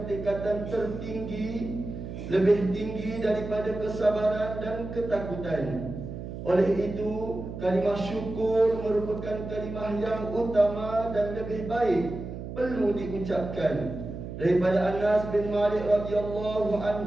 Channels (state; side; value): noise; right; hum, 9 dB below the sound